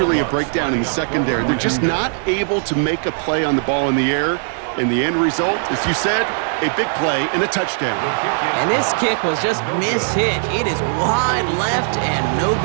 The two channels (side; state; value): left; silent; digital silence